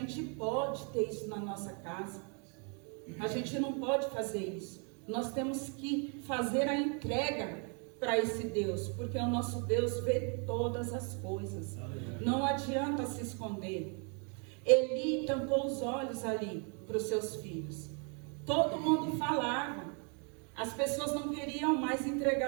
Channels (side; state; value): left; quieter; 37.7 dB